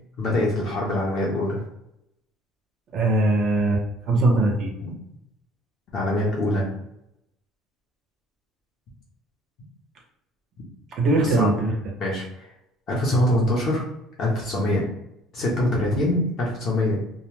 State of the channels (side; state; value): both; normal; correlation 0.57